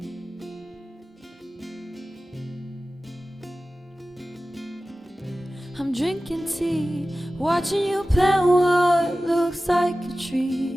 I'm drinking tea, watching you plant what looks like a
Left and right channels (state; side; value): normal; both; correlation 0.96